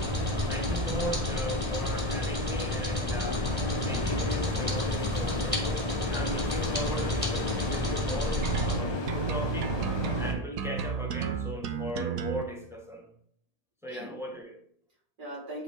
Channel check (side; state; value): left; late; 1.8 ms